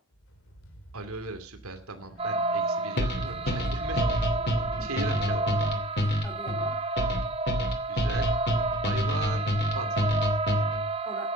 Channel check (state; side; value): normal; both; correlation 0.44